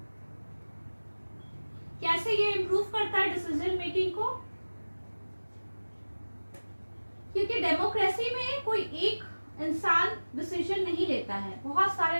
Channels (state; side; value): inverted; both; correlation -1.00